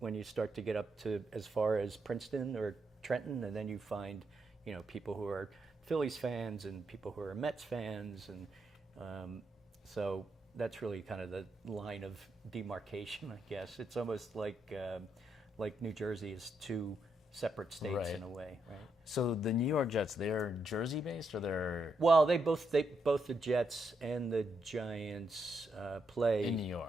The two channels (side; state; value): both; normal; correlation 0.80